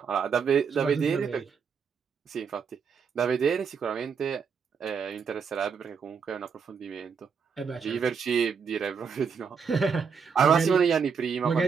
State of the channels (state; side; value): quieter; left; 6.2 dB